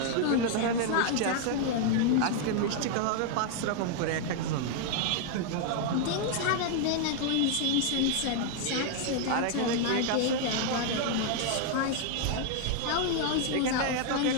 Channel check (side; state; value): both; different; correlation 0.00